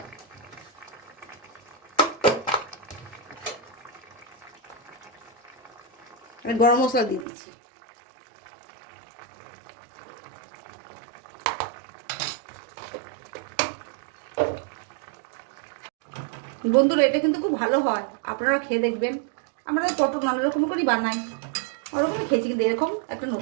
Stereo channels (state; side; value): drops out; left; at 7.2 s